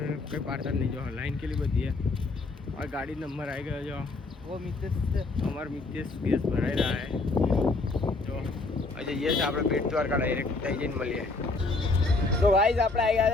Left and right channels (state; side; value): quieter; right; 3.5 dB